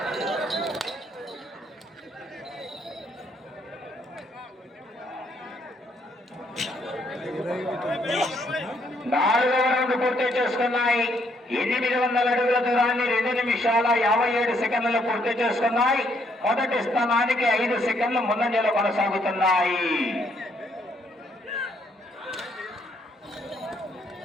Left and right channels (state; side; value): normal; both; correlation 0.71